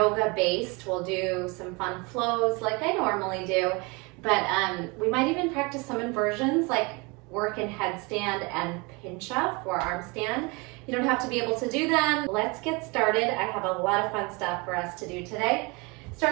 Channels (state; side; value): quieter; left; 28.0 dB